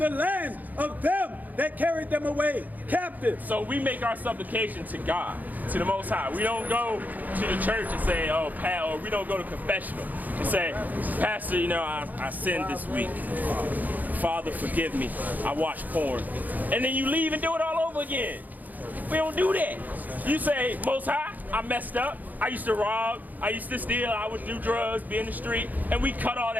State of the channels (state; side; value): late; left; 0.082 ms